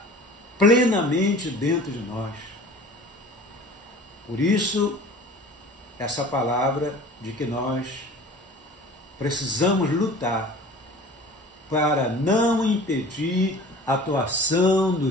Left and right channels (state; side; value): normal; both; correlation 0.43